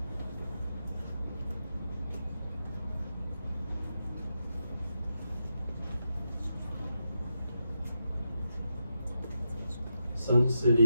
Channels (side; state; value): both; inverted; correlation -0.85